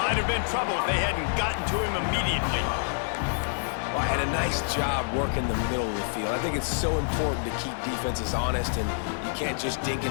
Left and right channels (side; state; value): right; silent; digital silence